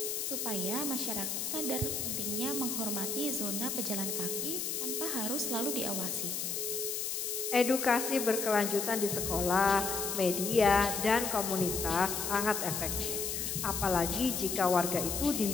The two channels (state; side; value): noise; left; hiss, 2 dB below the sound